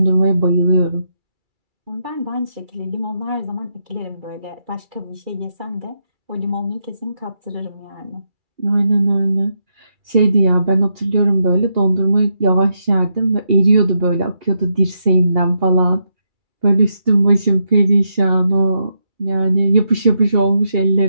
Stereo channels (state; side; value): late; left; 2.3 ms